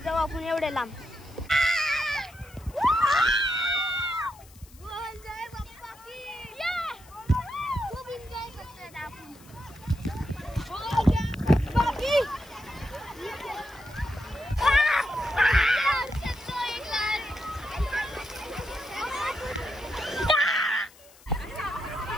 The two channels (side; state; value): left; noise; hiss, 24 dB below the sound